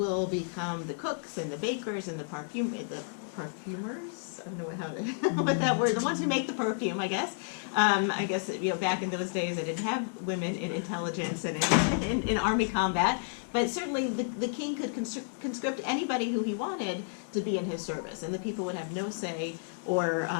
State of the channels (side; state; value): right; silent; digital silence